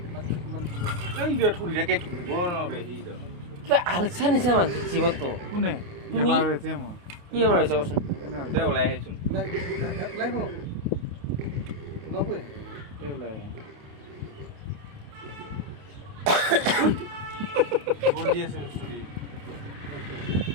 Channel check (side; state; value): left; late; 28 ms